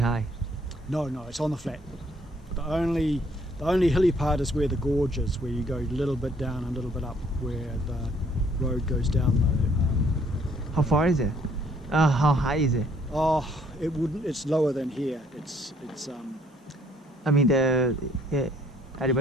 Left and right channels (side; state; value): both; normal; correlation 0.64